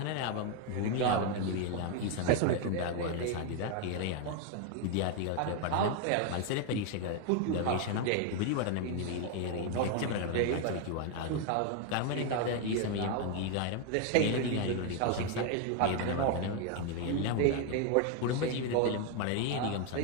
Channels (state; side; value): different; both; correlation 0.01